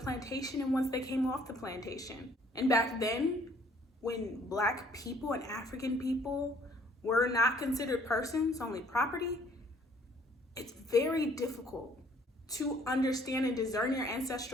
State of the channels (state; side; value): normal; both; correlation 0.61